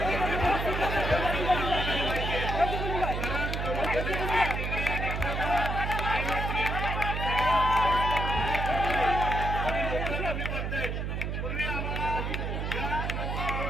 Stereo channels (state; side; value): noise; right; hum, 2 dB below the sound